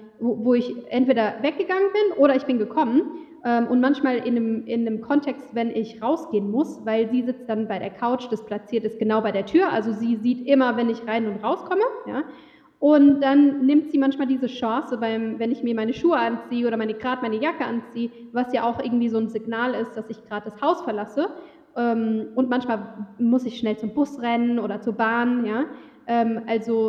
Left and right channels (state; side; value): identical; both; correlation 1.00